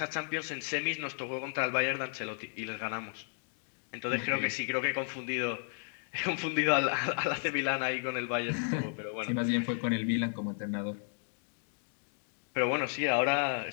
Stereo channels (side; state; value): right; silent; 55 dB below the other